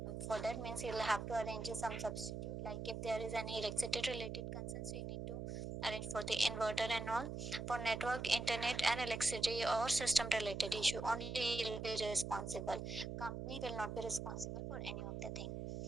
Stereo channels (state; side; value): noise; right; hum, 5 dB below the sound